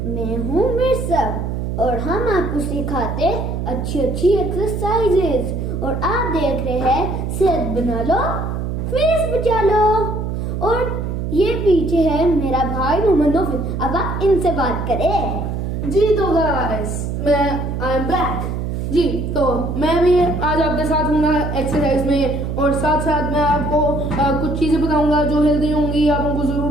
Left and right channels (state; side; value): noise; right; hum, 3 dB below the sound